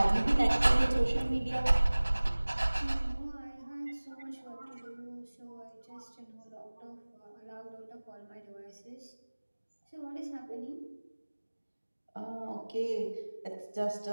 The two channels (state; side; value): inverted; both; correlation -1.00